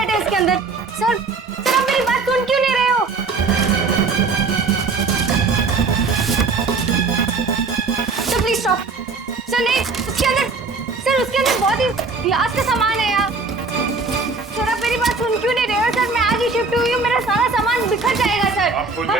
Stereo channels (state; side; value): quieter; left; 4.2 dB